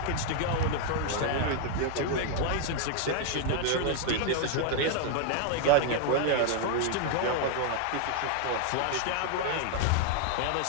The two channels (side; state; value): both; different; correlation 0.00